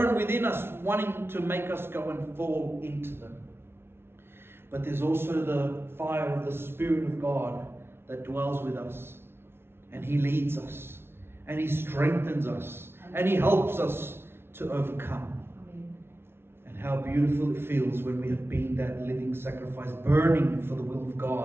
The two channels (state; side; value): late; left; 0.12 ms